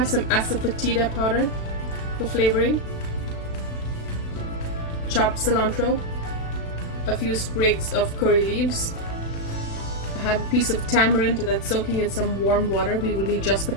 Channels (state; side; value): late; right; 36 ms